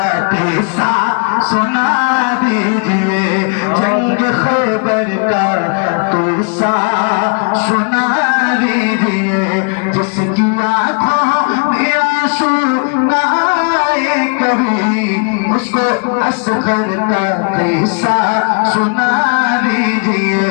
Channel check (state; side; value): quieter; right; 38.6 dB